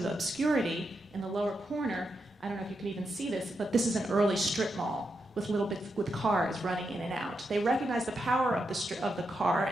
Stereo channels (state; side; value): normal; both; correlation 0.84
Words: obscurity in the lower corner. I don't know if you can even see this, but this is an early strip mall with cars running in and out. They recognized the power of the car